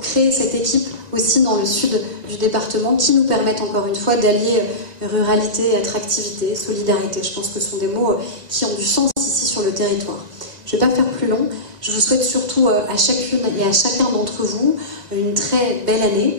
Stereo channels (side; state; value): left; late; 1.9 ms